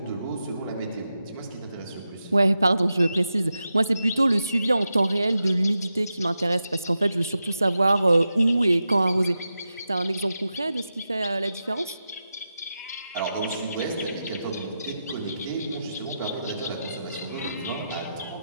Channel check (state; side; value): inverted; both; correlation -0.90